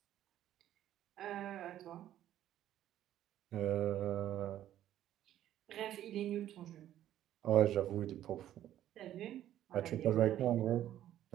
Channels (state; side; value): quieter; left; 12.1 dB